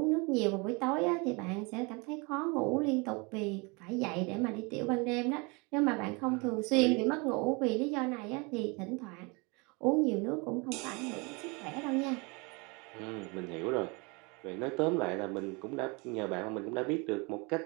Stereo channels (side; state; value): left; quieter; 29.1 dB